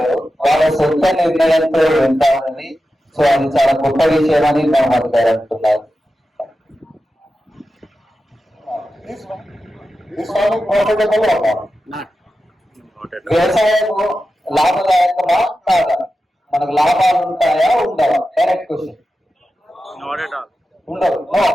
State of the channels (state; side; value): normal; both; correlation 0.92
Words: వాళ్ళ సొంత నిర్ణయంతో వెళ్తారని. సో అది చాలా గొప్ప విషయం అని మహమ్మద్ గారు అంటున్నారు. వ్యవసాయం లాభదాయకమా కాదా? మనకు లాభాలు ఉంటాయా ఉండవా? Direct question. ఉండవు. No